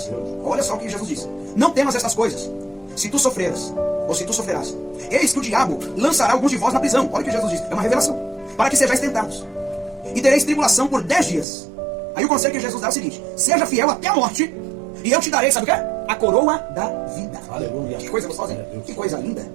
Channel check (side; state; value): left; drops out; at 11.5 s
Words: Olha só o que Jesus diz: não temas estas coisas, se tu sofreras, ou se tu sofrerás, eis que o diabo lançará alguns de vós na prisão. Olha o que Jesus diz, é uma revelação: para que sejais tentados, e tereis tribulação por 10 dias. Aí o conselho que Jesus dá é o seguinte: seja fiel até a morte, e eu te darei, sabe o que é? A coroa da vida. Aleluia. Que coisa gostosa, hein? Que coisa linda.